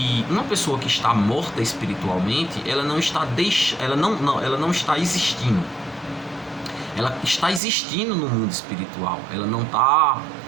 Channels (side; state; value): left; drops out; at 7.6 s